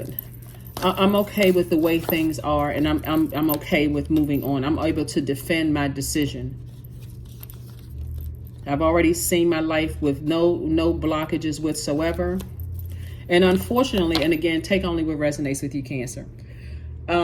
I'm okay with the way things are, and I'm okay with moving on. I'm able to defend my decision. I've already seen my life with no blockages whatsoever. And unfortunately, and again, take only what resonates with you, Cancer.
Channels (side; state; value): both; identical; correlation 1.00